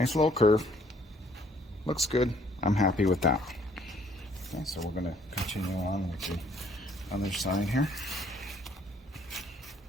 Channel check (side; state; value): both; normal; correlation 0.63